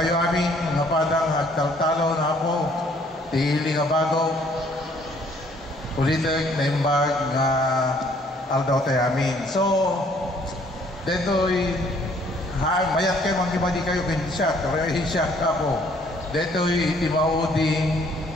aming nga padang agtaltalo na po tili nga bago ulitek na imbag nga aldaw tayo amin so deto'y mayat kayo magkibadi kayo kinsyak kaya hinsyak ka po deto'y itimaudi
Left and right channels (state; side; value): normal; both; correlation 0.62